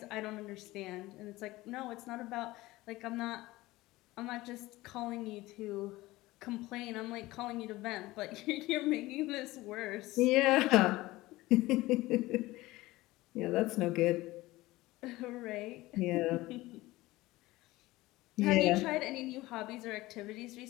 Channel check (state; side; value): quieter; right; 18.8 dB